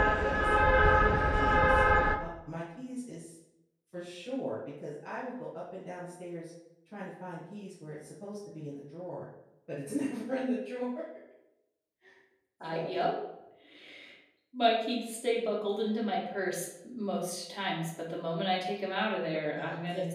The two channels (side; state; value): both; identical; correlation 1.00